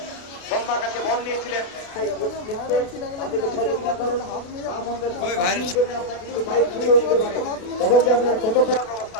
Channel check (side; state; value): right; late; 32 ms